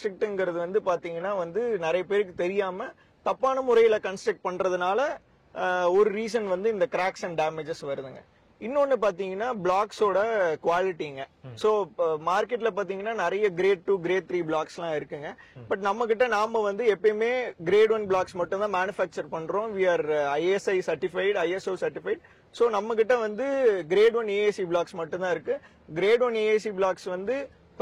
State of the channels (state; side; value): identical; both; correlation 1.00